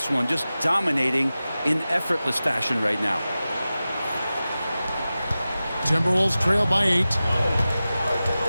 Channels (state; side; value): inverted; both; correlation -0.95